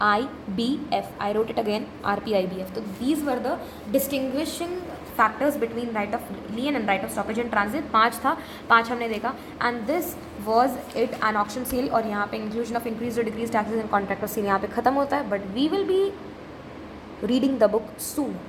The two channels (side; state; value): both; identical; correlation 1.00